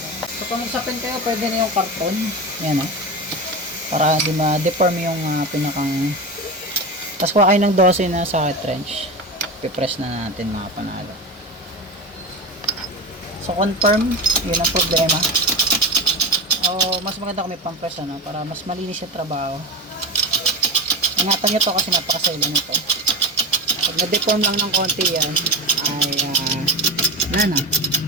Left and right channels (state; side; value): normal; both; correlation 0.23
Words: So, kung magsapin kayo, pwede na yung karton. Yan, no? Para hindi ma-deform yung pinakang. Tapos kuha kayo ng 12 na socket wrench. Pipress na natin mga panalo. So confirm, yun ang problema. O mas maganda kung may pampress, ano, para mas malinis yung trabaho. Ingatan nyo to kasi napakasailan nito. Pag na-deform lang ng konti yan, ay wala na.